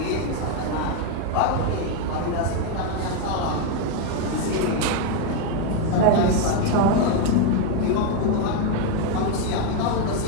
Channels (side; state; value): both; different; correlation 0.02